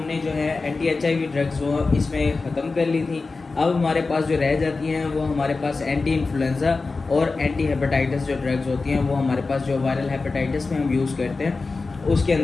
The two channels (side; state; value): right; quieter; 3.9 dB